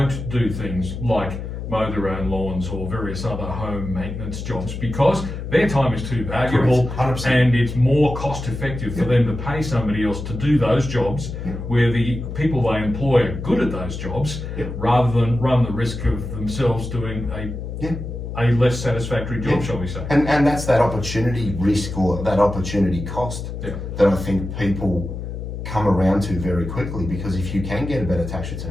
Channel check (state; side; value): noise; left; hum, 7 dB below the sound